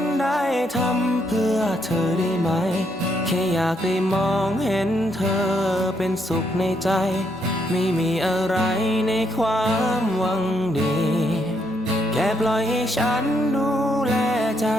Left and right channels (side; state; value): both; normal; correlation 0.75